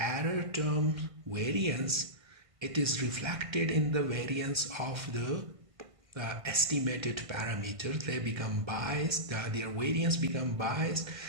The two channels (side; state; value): left; late; 1.5 ms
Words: term variance, it is reflected in the variance of the estimated parameters. They become biased, their variance become biased,